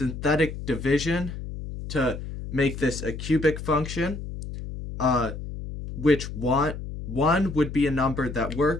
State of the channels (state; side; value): noise; left; hum, 8 dB below the sound